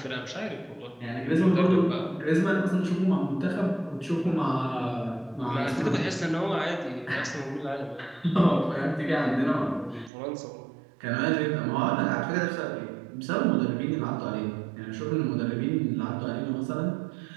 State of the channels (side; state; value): left; drops out; at 10.1 s